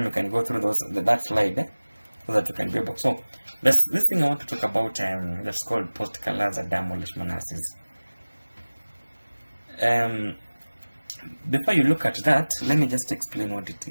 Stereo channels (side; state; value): both; inverted; correlation -1.00